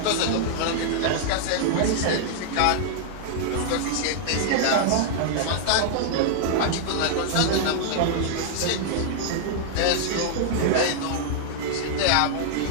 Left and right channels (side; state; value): both; different; correlation -0.01